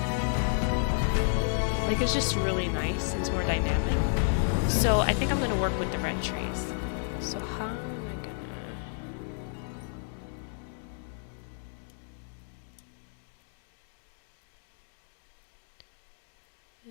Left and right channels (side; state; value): right; silent; digital silence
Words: Like, it's just really nice, it's more dynamic. So I think I'm gonna work with the red trees. So how am I gonna...